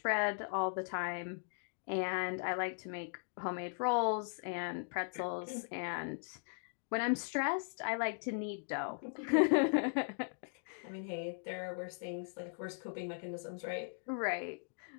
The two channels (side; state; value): right; silent; digital silence